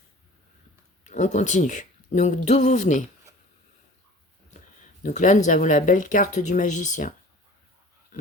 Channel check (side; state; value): both; normal; correlation 0.44